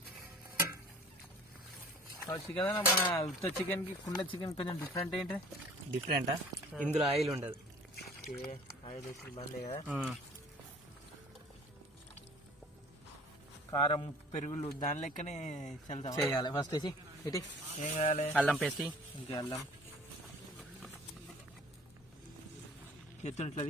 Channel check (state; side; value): normal; both; correlation 0.49